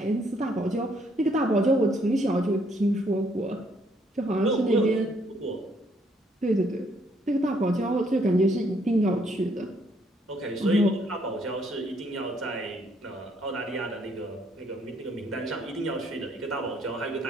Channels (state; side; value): normal; both; correlation 0.69